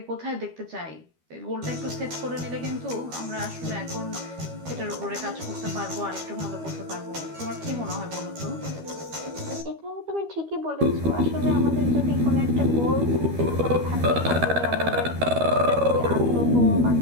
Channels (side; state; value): left; late; 13 ms